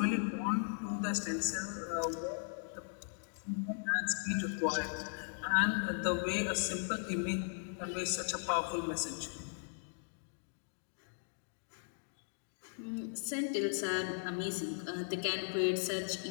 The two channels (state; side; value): silent; right; digital silence